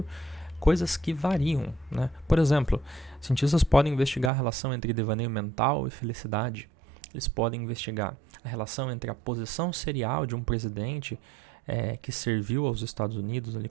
coisas que variam. Né? Por exemplo, cientistas podem investigar a relação entre devaneio mental e felicidade. Eles podem investigar a relação entre a posição serial de um presidente que serviu aos Estados Unidos ali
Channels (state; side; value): drops out; left; at 4.3 s